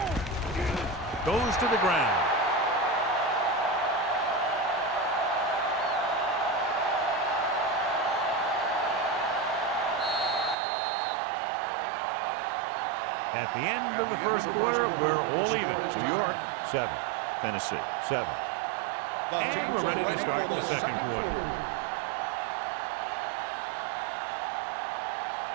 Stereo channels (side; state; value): left; drops out; at 10.6 s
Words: Goes to the ground. At the end of the 1st quarter, we're all even. New York, 7. Tennessee, 7. And we're ready to start the 2nd quarter.